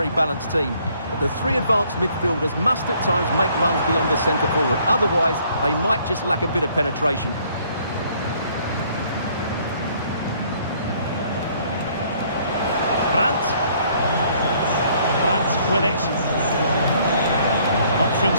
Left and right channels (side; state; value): both; inverted; correlation -0.62